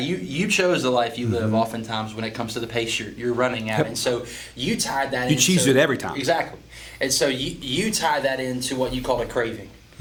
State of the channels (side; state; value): both; identical; correlation 1.00